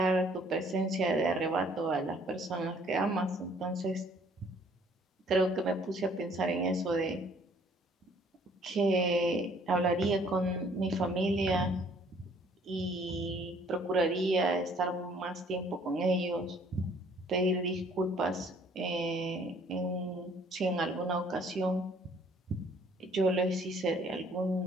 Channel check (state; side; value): normal; both; correlation 0.60